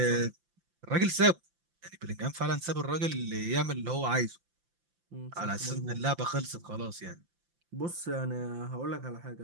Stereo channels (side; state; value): left; late; 5.8 ms